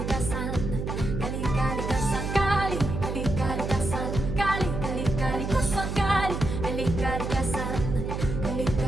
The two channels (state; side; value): noise; right; hum, 4 dB below the sound